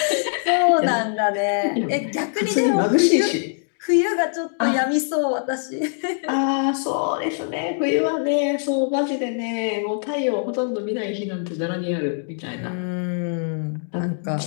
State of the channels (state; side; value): silent; right; 64 dB below the other